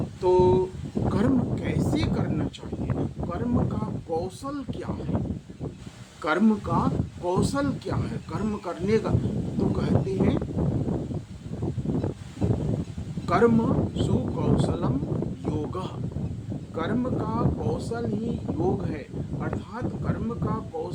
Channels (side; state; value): both; identical; correlation 1.00